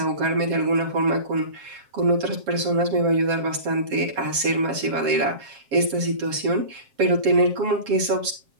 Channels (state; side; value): late; left; 7.4 ms